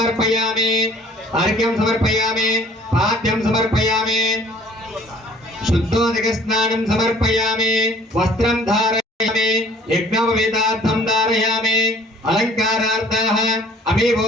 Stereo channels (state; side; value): normal; both; correlation 0.54